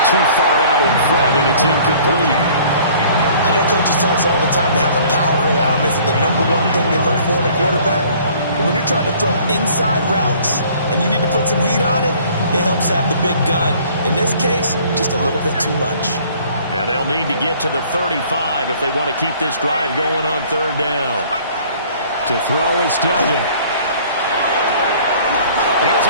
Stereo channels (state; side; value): inverted; both; correlation -0.54